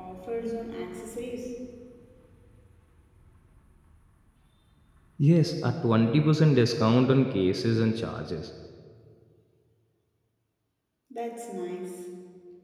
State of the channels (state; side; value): identical; both; correlation 1.00